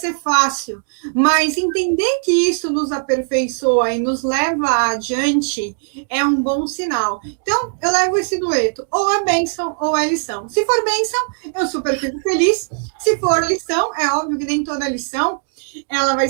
fácil, mas entender que isso nos aperfeiçoa e nos leva adiante é um bom sinal. Então, eu levo esse dueto, ou é bênção ou é lição. Se for bênção, eu super fico feliz. Se for lição, é óbvio que nem toda lição ela vai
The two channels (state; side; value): silent; left; 67 dB below the other